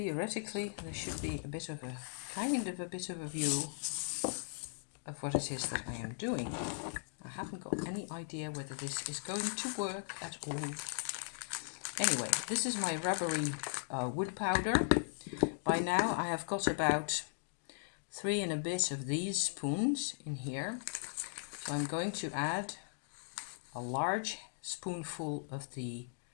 there should be a bit of a view of what it is that I am doing. I haven't got any idea whether this is going to work at all. Anyway, this is my rubbery wood powder. By now I have got about 3 and a bit of these spoons in here. So I'm going to add a large spoonful of the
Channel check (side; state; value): right; silent; digital silence